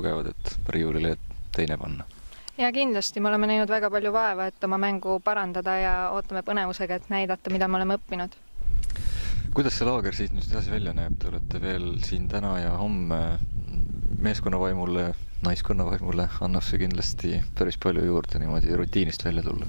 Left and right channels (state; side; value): inverted; both; correlation -1.00